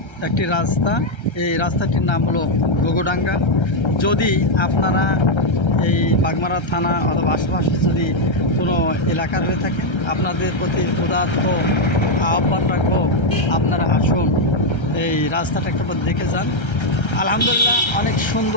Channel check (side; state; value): right; late; 1.3 ms